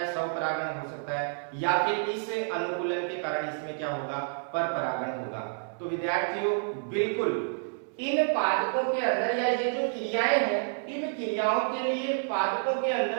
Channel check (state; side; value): silent; left; 58 dB below the other